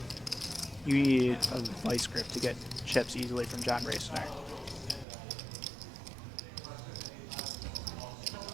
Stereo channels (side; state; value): left; drops out; at 5.1 s